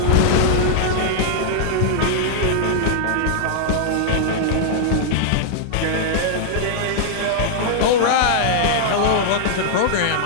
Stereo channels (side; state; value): both; different; correlation -0.01